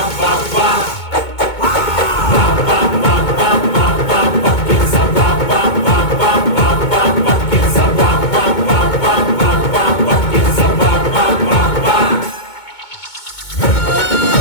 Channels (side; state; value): right; late; 2.2 ms